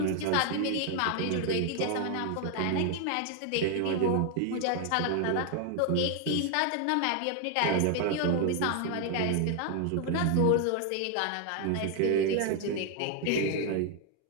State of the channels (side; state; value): both; different; correlation 0.00